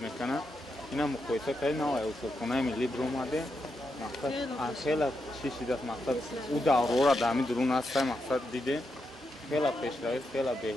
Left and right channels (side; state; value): both; normal; correlation 0.85